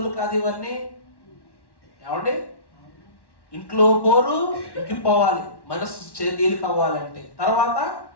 కాదు ఇవన్నీ. ఏమండి? ఇంట్లో పోరు ఇంకిపోవాలి, మనస్సు తేలిక అవ్వాలంటే. తర్వాత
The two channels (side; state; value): right; late; 1.1 ms